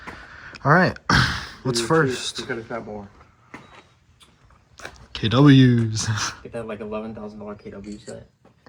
All right, what's first? You could have got more. KWs. Get that like $11,000 KW set.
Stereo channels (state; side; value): identical; both; correlation 1.00